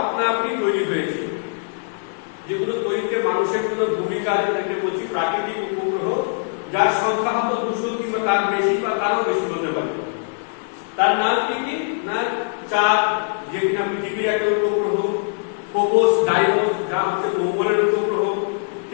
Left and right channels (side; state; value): right; silent; 61 dB below the other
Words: আপনা আপনি তৈরি হয়েছে, যেগুলো তৈরিতে মানুষের কোনো ভূমিকা, যেটাকে বলছি প্রাকৃতিক উপগ্রহ, যার সংখ্যা হয়তো 200 কিংবা তার বেশি বা তারও বেশি হতে পারে। তার নাম কি কি না, চাঁদ যে কিনা পৃথিবীর একটা উপগ্রহ, ফোবস, ডাইমোস যা হচ্ছে মঙ্গলের উপগ্রহ,